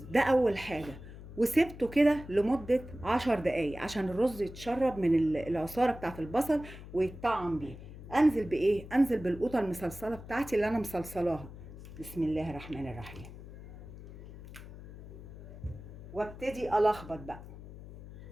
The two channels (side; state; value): left; noise; hum, 14 dB below the sound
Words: ده اول حاجه، وسبته كده لمده 10 دقايق عشان الرز يتشرب من العصاره بتاعت البصل ويتطعم بيه. انزل بايه؟ انزل بالقوطه المصلصله بتاعتي اللي انا مصلصلاها. بسم الله الرحمن الرحيم. وابتدي الخبط بقى،